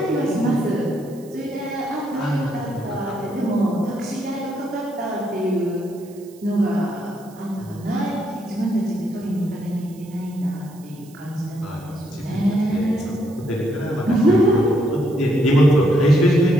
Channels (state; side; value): noise; right; hiss, 26 dB below the sound